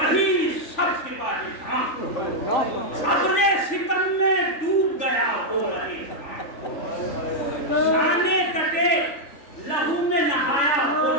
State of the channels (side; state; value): right; late; 3.4 ms